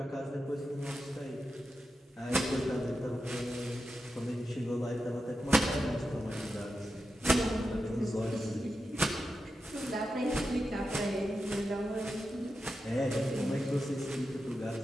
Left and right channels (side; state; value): both; normal; correlation 0.89